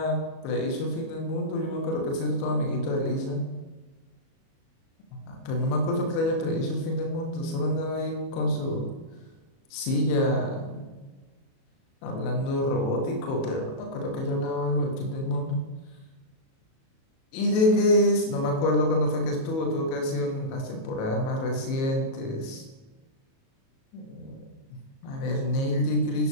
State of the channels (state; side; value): late; right; 37 ms